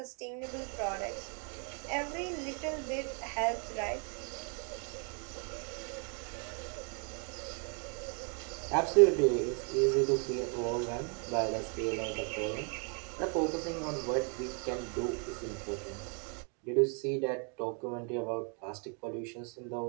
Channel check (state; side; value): quieter; left; 38.3 dB